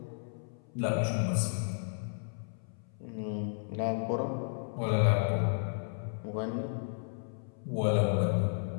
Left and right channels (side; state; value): right; silent; 56 dB below the other